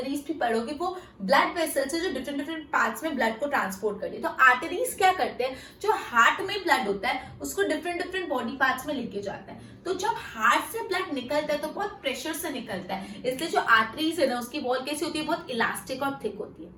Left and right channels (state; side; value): identical; both; correlation 1.00